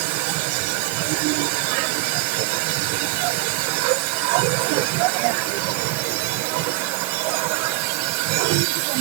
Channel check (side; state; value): left; quieter; 20.4 dB